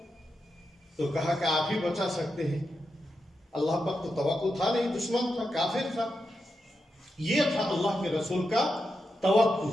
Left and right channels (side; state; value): both; normal; correlation 0.87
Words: تو کہا کہ آپ ہی بچا سکتے ہیں. اللہ پر تو توکل تھا نہیں، دشمن تھا، کافر تھا. یہ تھا اللہ کے رسول کا